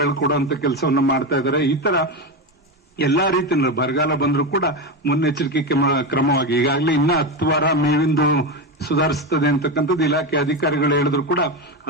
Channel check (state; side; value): normal; both; correlation 0.15